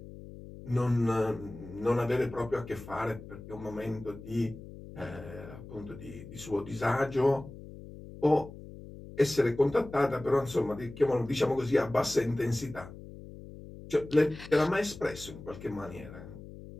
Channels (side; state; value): left; noise; hum, 15 dB below the sound